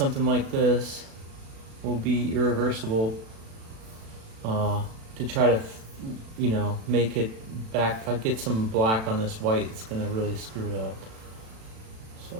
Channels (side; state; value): left; late; 36 ms